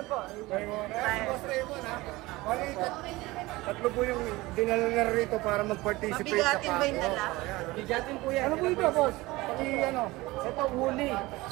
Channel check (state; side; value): quieter; left; 20.4 dB